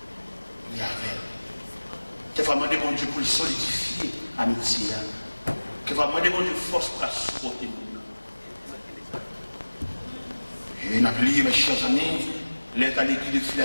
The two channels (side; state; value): both; inverted; correlation -1.00